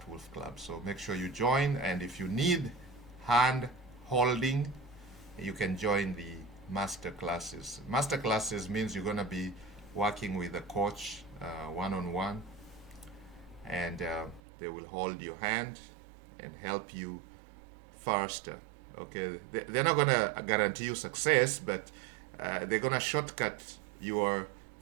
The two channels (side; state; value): left; drops out; at 14.4 s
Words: Wolf Club. So make sure you join, and if you need hand holding, you can join the master classes. Master classes means you're going to be working with a coach one on one, and they will hold your hand and help you faster. Okay, they're not going to guarantee you success, but they're going to shortcut your